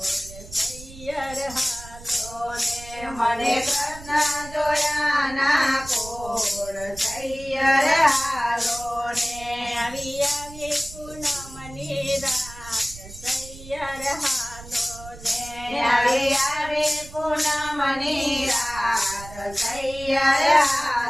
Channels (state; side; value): noise; right; rumble, 16 dB below the sound